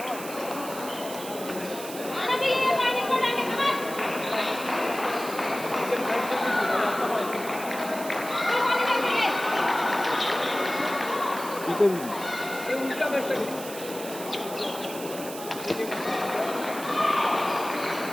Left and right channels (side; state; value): right; noise; hiss, 12 dB below the sound